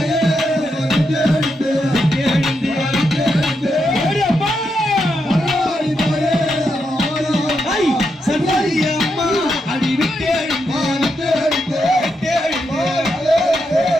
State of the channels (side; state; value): both; normal; correlation 0.83